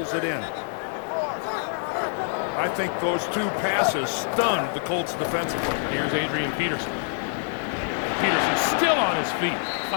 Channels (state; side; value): silent; right; digital silence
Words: it in. I think those 2 passes stunned the Colts defensively. Here's Adrian Peterson. Peterson still on his feet,